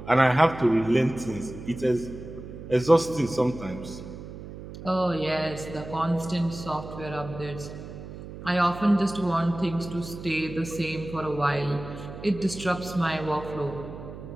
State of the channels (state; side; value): noise; right; hum, 12 dB below the sound